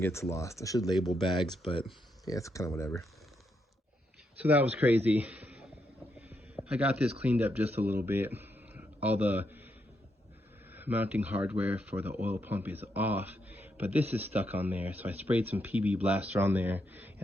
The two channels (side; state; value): both; normal; correlation 0.80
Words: lost. I should label bags, but yeah, it's kind of whatever. So that was crazy. I got this cleaned up just a little bit. All the mounting hardware for the oil pump is off, but this is stuck on there. So I sprayed some PB Blaster on there,